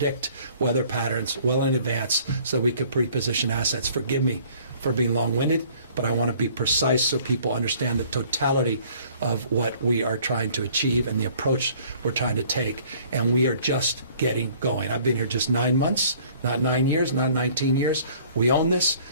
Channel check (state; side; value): inverted; both; correlation -0.55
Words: weather patterns well in advance so we could pre-position assets. Forgive me for being long-winded, but I want to be precise so people understand the totality of what we are trying to achieve and the approach we're trying to take. And we are just getting going. I've been here just 9 months, not 9 years, not 19 years. We own this,